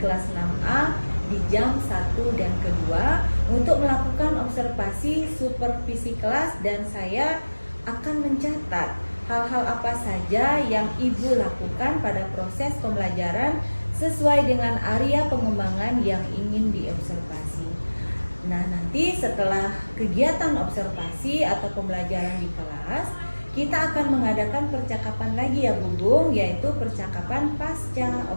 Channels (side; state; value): both; inverted; correlation -1.00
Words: 6A di jam 1 dan kedua untuk melakukan observasi supervisi kelas, dan saya akan mencatat hal-hal apa saja yang Ibu lakukan pada proses pembelajaran sesuai dengan area pengembangan yang ingin diobservasi. Nah, nanti setelah kegiatan observasi atau pembelajaran di kelas, kita akan mengadakan percakapan lagi ya Bu Bung, yaitu percakapan pasca